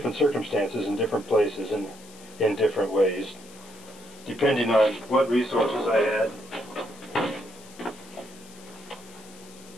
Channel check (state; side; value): noise; left; hiss, 21 dB below the sound